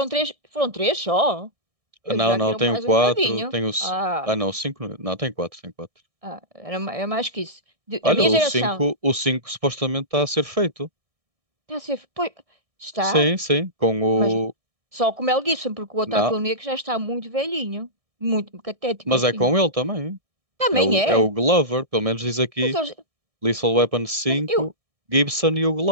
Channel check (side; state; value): left; late; 1.6 ms